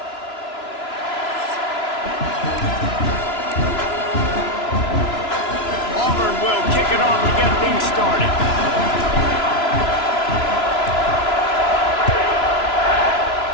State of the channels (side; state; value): right; late; 2.9 ms